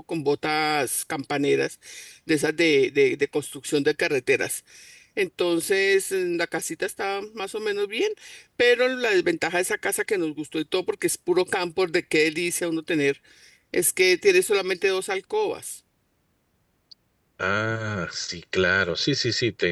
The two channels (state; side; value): identical; both; correlation 1.00